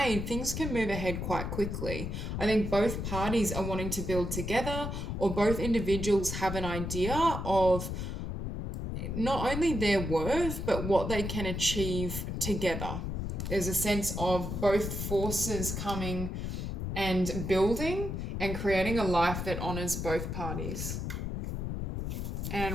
things can move ahead quite quickly. I think both parties are wanting to build together, or both individuals have an idea of not only their worth, but what they can achieve together. There's a sense of both forces coming and building and creating a life that honors both parties.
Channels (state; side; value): noise; left; rumble, 3 dB below the sound